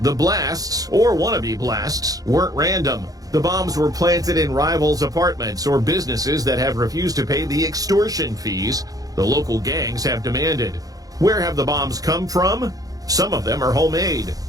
the blasts, or wannabe blasts, weren't random. The bombs were planted in rivals' apartments or businesses that have refused to pay the extortion fees the local gangs have demanded. Where have the bombs come from? Some of them are homemade.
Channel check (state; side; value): late; left; 0.18 ms